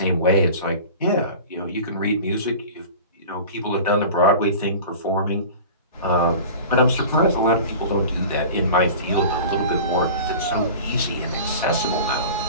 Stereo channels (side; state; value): both; inverted; correlation -0.37